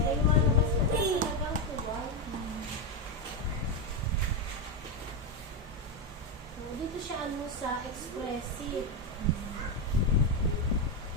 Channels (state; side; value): normal; both; correlation 0.08